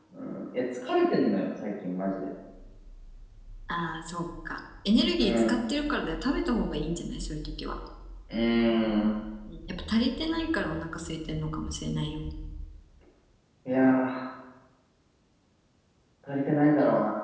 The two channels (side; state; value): both; identical; correlation 1.00